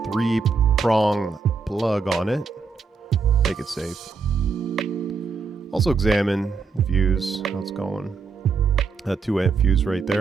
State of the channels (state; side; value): quieter; left; 4.8 dB